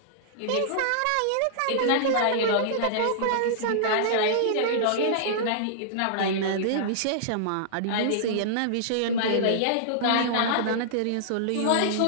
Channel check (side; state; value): both; different; correlation -0.02